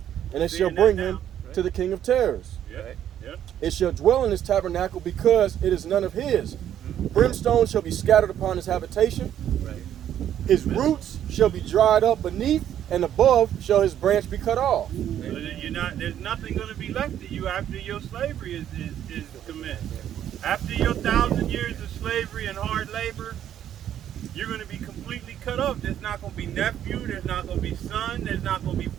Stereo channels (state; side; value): quieter; left; 10.5 dB